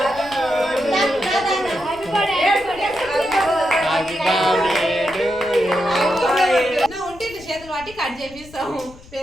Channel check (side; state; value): left; noise; rumble, 21 dB below the sound